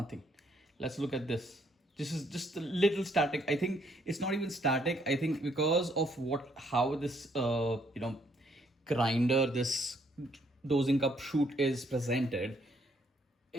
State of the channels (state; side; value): normal; both; correlation 0.69